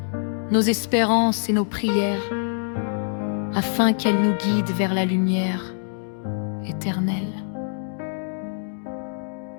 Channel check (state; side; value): silent; right; digital silence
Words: nos espérances et nos prières, afin qu'elle nous guide vers la lumière éternelle.